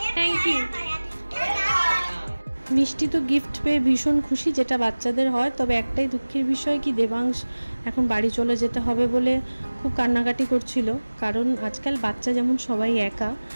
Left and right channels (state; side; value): inverted; both; correlation -1.00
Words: Thank you. মিষ্টি তো গিফট পেয়ে ভীষণ খুশি, যেটা বাচ্চাদের হয়। তবে একটাই দুঃখের বিষয় কি, দেবাংশ এখন বাড়ি চলে যেতে হবে বলে খুব কান্নাকাটি করছিল। কারণ আজকাল বাচ্চা যেমন সবাই একা,